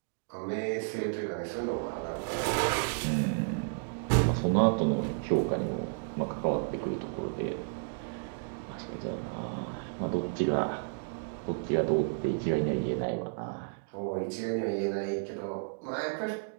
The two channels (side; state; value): left; silent; digital silence